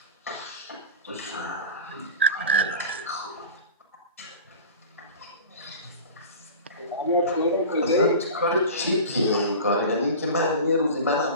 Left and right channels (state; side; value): inverted; both; correlation -0.34